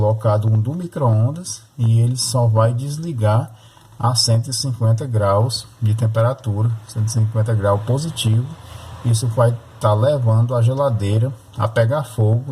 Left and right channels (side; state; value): both; identical; correlation 1.00